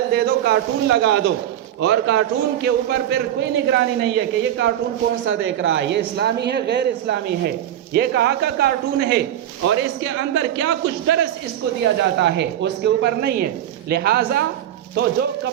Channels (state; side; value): quieter; left; 11.4 dB